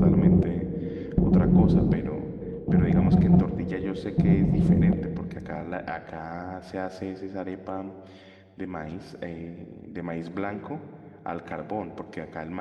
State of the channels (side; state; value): both; identical; correlation 1.00